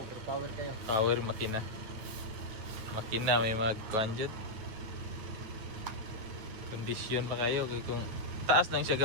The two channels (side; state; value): left; late; 9.3 ms